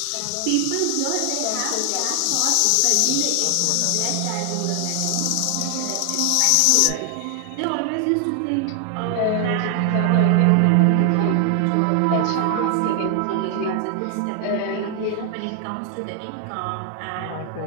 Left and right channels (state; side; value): different; both; correlation 0.00